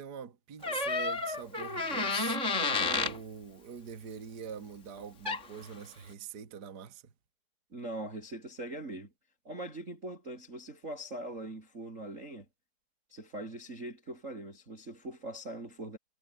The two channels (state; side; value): late; left; 3.6 ms